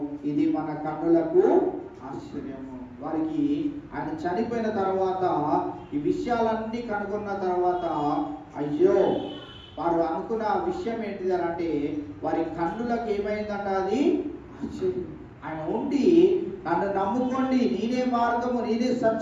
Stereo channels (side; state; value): both; identical; correlation 1.00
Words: ఇది మన కన్నులకు ఆశ్చర్యము. వారికి ఆయన చనిపోయిన తర్వాత ఈ విషయాలన్నీ కనుగొన్న తర్వాత, అయ్యో వారు అనుకున్న విషయం ఏంటిది అని అంటే వారి కన్నులకు ఏమైందంట, అది ఆశ్చర్యం. ఆయన ఉండి నన్ను నమ్ముకోండి, నేనే మార్గము, నేనే